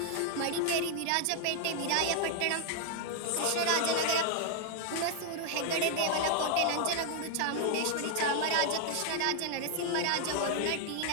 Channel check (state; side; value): different; both; correlation 0.00